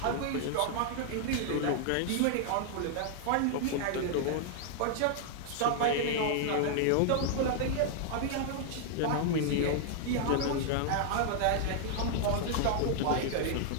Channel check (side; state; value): both; different; correlation 0.00